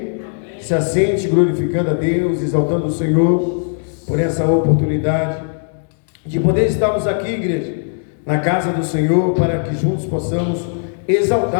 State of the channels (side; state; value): right; silent; 65 dB below the other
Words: Se assente glorificando a Deus, exaltando o Senhor por essa oportunidade de poder estarmos aqui, igreja, na casa do Senhor, para que juntos possamos